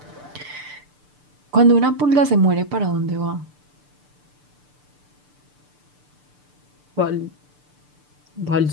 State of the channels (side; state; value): left; late; 6.8 ms